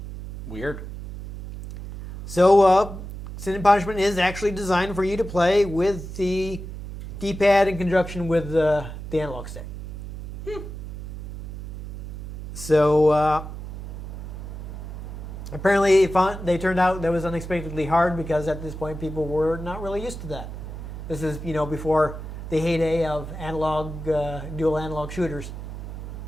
Weird. So Sin and Punishment is actually designed for you to play with the D-pad in conjunction with the analog stick. So apparently they turned out that was unexpectedly hard because at this point people were not really used to that. This is, before the heyday of dual analog shooters.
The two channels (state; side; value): noise; right; hum, 10 dB below the sound